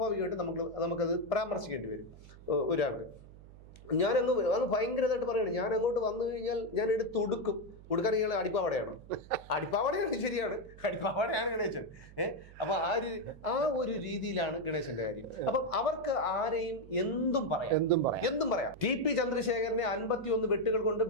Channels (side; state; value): right; noise; hum, 19 dB below the sound